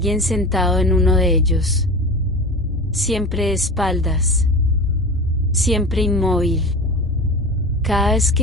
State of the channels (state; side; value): normal; both; correlation 0.31